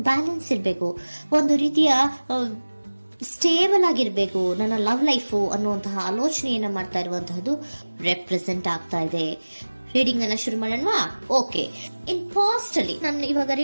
ಬ್ಯಾಲೆನ್ಸ್ ಇರಬೇಕು, ಒಂದು ರೀತಿಯ ಸ್ಟೇಬಲ್ ಆಗಿರ್ಬೇಕು ನನ್ನ ಲವ್ ಲೈಫು ಅನ್ನುವಂತಹ ಆಲೋಚನೆಯನ್ನ ಮಾಡ್ತಾ ಇರುವಂತಹದ್ದು ರೆಪ್ರೆಸೆಂಟ್ ಆಗ್ತಾ ಇದೆ. ರೀಡಿಂಗ್ ಅನ್ನ ಶುರು ಮಾಡೋಣವಾ? ಓಕೆ. ಇನ್ ಪಾಸ್ಟ್ ಅಲ್ಲಿ ನಾನು ಇವಾಗ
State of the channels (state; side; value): inverted; both; correlation -1.00